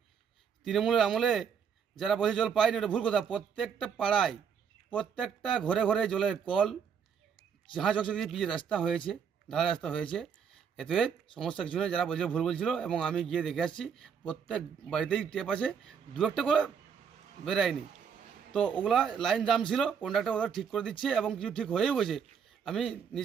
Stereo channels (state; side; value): quieter; left; 7.1 dB